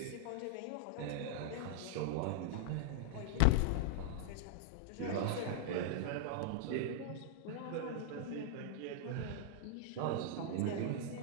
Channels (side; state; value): both; different; correlation -0.01